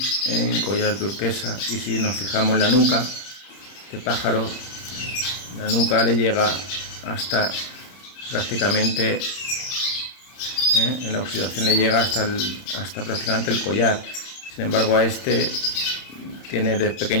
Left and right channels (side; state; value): right; late; 31 ms